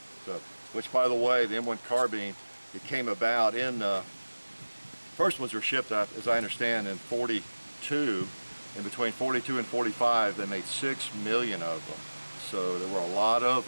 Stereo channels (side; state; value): both; inverted; correlation -1.00